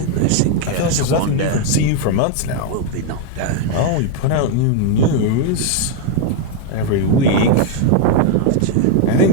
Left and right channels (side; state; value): both; different; correlation 0.00